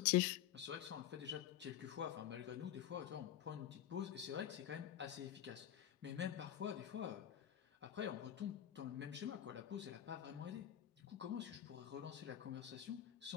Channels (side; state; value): right; quieter; 11.2 dB